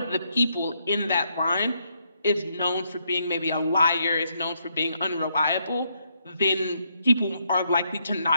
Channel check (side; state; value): both; inverted; correlation -0.76